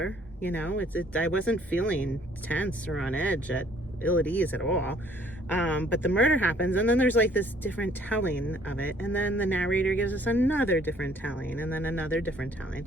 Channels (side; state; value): both; normal; correlation 0.60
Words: I wasn't feeling tense or on edge at ease at all. But the murder happens, and then there's like this different telling of it, and then the narrator gives us another different telling, and then another different telling.